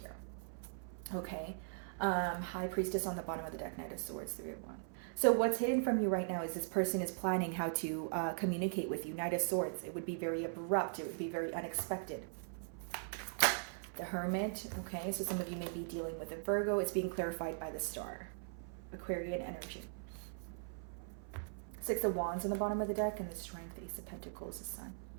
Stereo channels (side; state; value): left; silent; 51 dB below the other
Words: Okay. High Priestess on the bottom of the deck, Knight of Swords, Three of Wands. So what's hidden from you right now is this person is planning how to communicate with you. Knight of Swords, it would be very abrupt. It would be very unexpected. The Hermit, okay, so some of you may be dealing with a Virgo. It's being clarified by the star. Aquarian energy. Six of Wands on the bottom of the deck, and the Strength, Ace of Pentacles, the Sun.